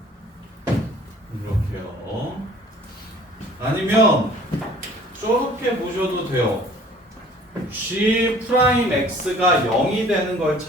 이렇게요. 아니면 저렇게 보셔도 돼요. G 프라임 X가 0이 되는 걸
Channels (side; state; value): both; normal; correlation 0.52